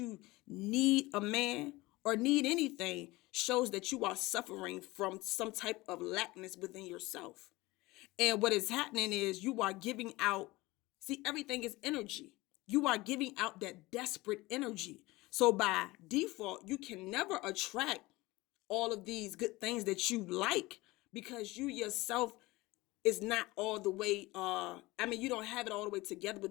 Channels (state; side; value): quieter; right; 20.7 dB